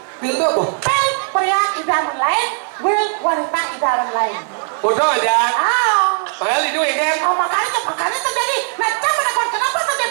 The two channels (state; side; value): silent; left; digital silence